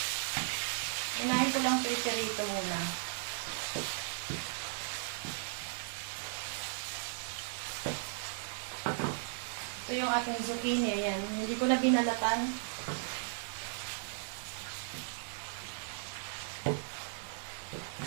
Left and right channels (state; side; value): silent; left; digital silence